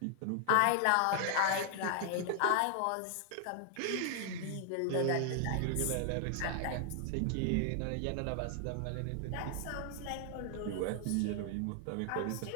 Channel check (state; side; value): different; both; correlation 0.00